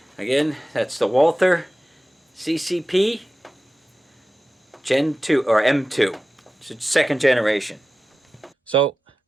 Again, that's the Walther CCP Gen 2 or M2. It's second generation. So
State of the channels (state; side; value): normal; both; correlation 0.94